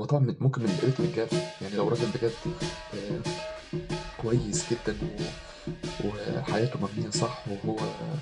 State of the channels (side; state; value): both; identical; correlation 1.00